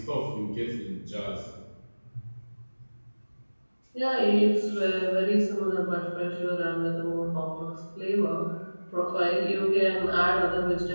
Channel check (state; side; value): inverted; both; correlation -1.00